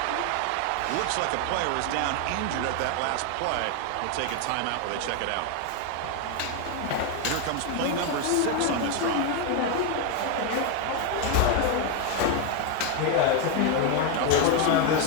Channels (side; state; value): both; different; correlation 0.01